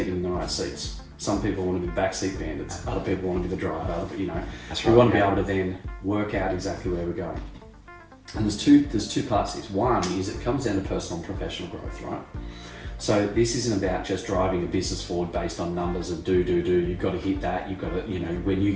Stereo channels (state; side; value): identical; both; correlation 1.00